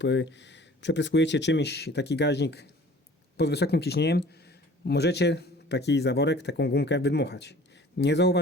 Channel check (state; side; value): normal; both; correlation 0.48